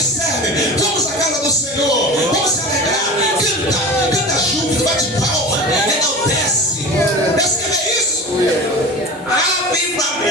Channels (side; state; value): both; normal; correlation 0.33